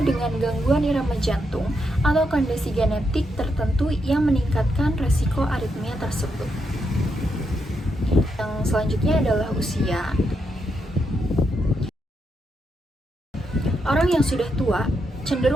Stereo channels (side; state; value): both; normal; correlation 0.81